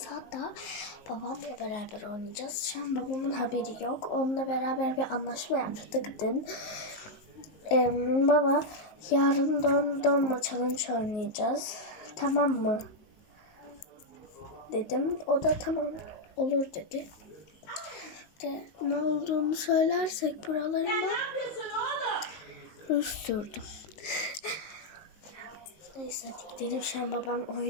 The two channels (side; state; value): right; late; 19 ms